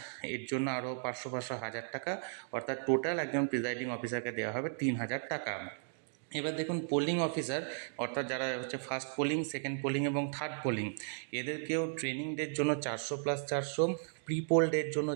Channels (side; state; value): left; silent; digital silence